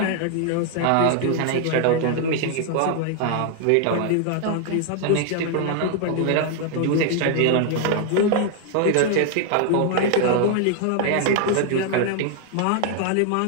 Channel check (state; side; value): different; both; correlation 0.00